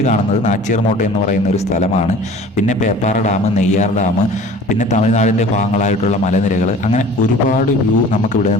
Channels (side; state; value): both; normal; correlation 0.44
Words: കാണുന്നത് നാച്ചിയാർമോട്ട എന്ന് പറയുന്ന ഒരു സ്ഥലമാണ്. പിന്നെ പേപ്പാറ ഡാം, നെയ്യാർ ഡാം, പിന്നെ തമിഴ്നാടിൻ്റെ ഭാഗങ്ങളായിട്ടുള്ള മലനിരകൾ, അങ്ങനെ ഒരുപാട് വ്യൂ നമുക്ക് ഇവിടെ